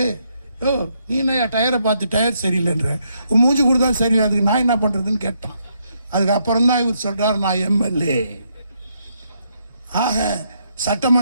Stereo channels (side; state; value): both; inverted; correlation -0.76